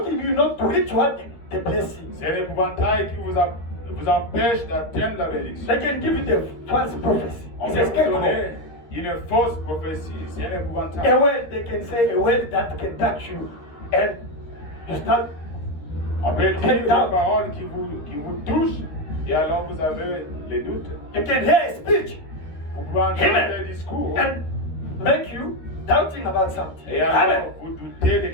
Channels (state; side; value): late; right; 13 ms